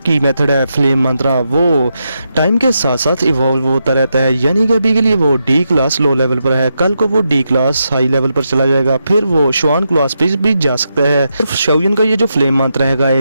मेथड है फ्लेम मंत्रा वो टाइम के साथ साथ इवॉल्व होता रहता है। यानी कि अभी के लिए वो डी क्लास लो लेवल पर है, कल को वो डी क्लास हाई लेवल पर चला जाएगा, फिर वो शुआन क्लास पे भी जा सकता है। शाओयन का ये जो फ्लेम मंत्रा है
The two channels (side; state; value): both; inverted; correlation -0.85